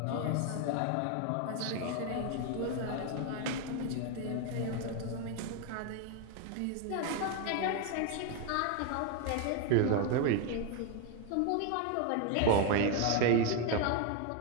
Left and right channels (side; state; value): both; different; correlation 0.01